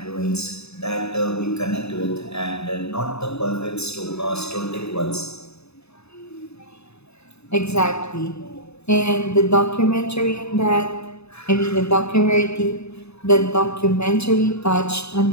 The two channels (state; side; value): late; right; 0.80 ms